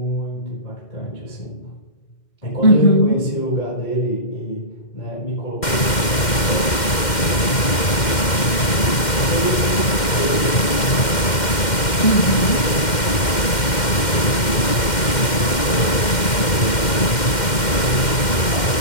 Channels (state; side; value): late; right; 2.1 ms